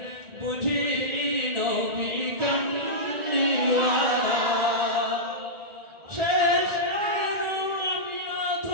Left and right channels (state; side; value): late; left; 1.9 ms